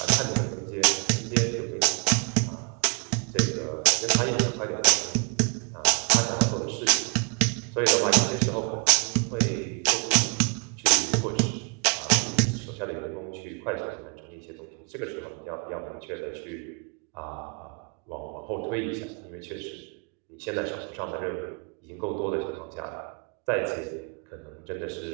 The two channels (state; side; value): quieter; left; 37.7 dB